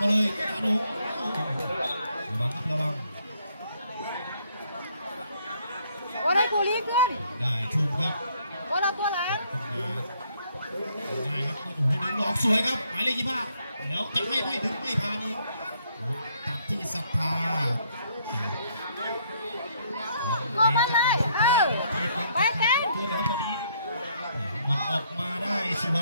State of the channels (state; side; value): inverted; both; correlation -0.68